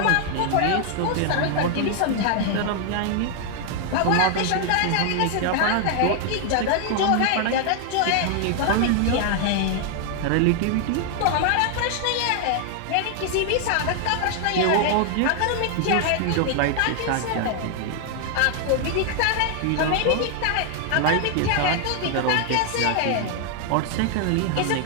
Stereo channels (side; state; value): both; different; correlation 0.00